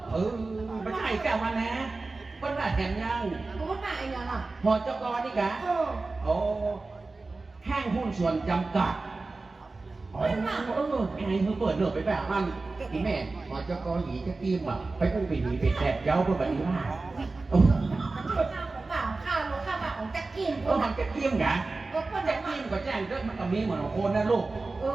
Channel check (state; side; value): quieter; left; 3.6 dB